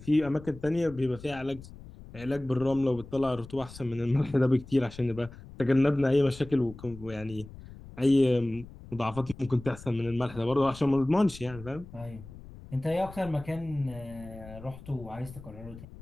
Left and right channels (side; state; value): left; noise; rumble, 17 dB below the sound